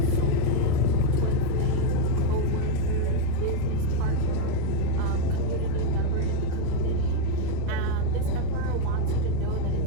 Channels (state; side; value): different; both; correlation 0.02